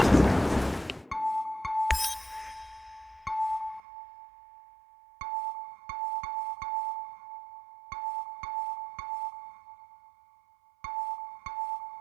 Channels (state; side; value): drops out; left; at 3.8 s